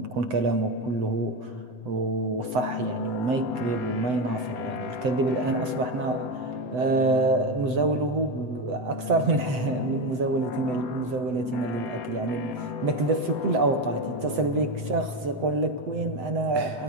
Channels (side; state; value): left; late; 7.9 ms